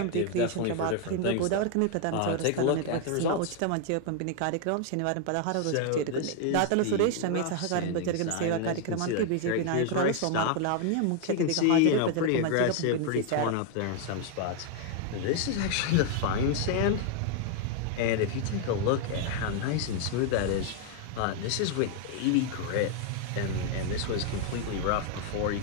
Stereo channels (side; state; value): both; different; correlation 0.00